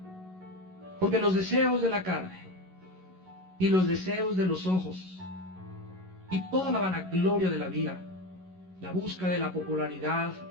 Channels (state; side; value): late; left; 11 ms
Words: Porque los deseos de la carne y los deseos de los ojos y toda la vanagloria de la vida, la búsqueda de la popularidad,